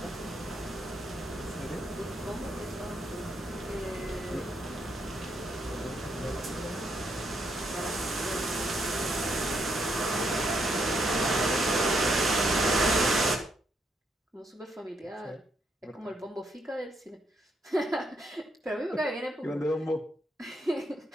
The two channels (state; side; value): normal; both; correlation 0.76